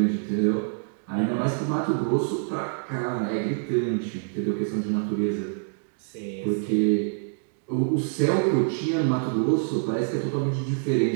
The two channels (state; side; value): silent; left; digital silence